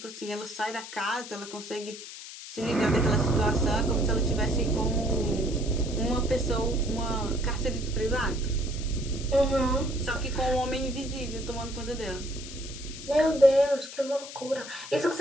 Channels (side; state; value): left; noise; hiss, 12 dB below the sound